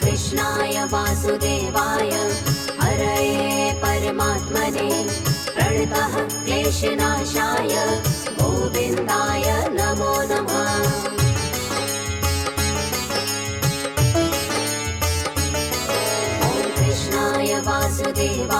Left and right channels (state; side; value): identical; both; correlation 1.00